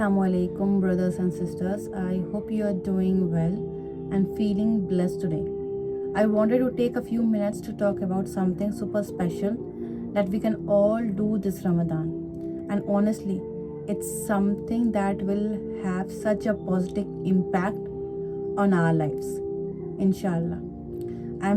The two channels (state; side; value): identical; both; correlation 1.00